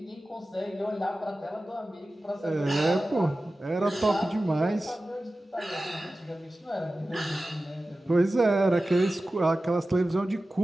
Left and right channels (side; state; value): both; normal; correlation 0.95